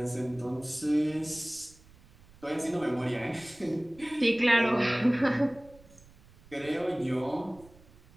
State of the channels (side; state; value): right; noise; rumble, 25 dB below the sound